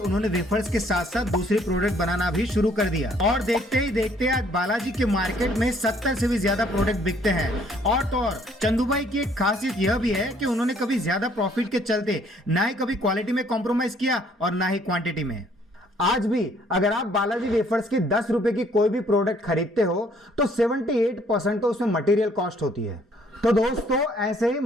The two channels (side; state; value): both; normal; correlation 0.63